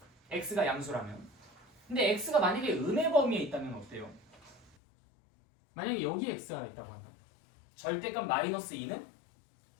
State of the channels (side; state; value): right; drops out; at 4.8 s